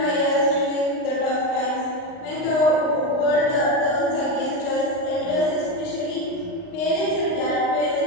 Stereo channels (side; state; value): right; late; 39 ms